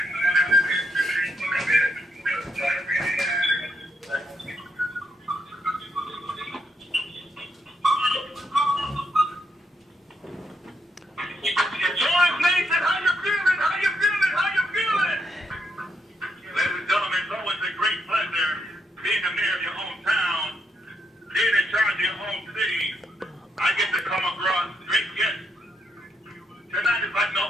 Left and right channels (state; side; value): normal; both; correlation 0.79